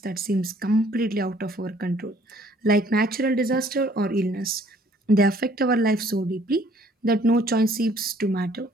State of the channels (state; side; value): normal; both; correlation 0.60